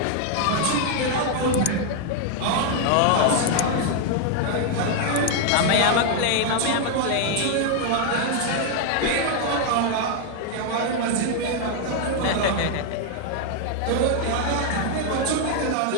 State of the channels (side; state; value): both; different; correlation 0.00